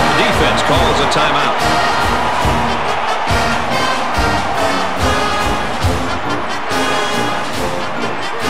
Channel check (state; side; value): identical; both; correlation 1.00